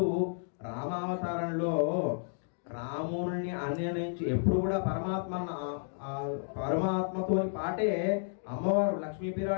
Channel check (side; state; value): right; silent; digital silence